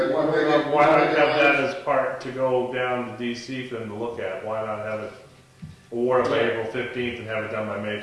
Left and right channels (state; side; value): identical; both; correlation 1.00